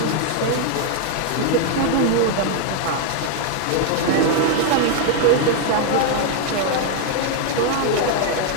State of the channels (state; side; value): different; both; correlation 0.00